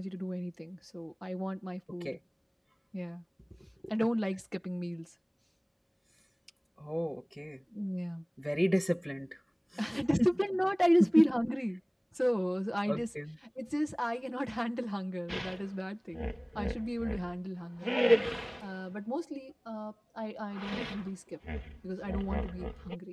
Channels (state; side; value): identical; both; correlation 1.00